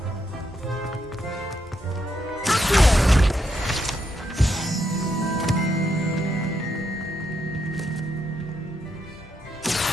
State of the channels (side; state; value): both; normal; correlation 0.79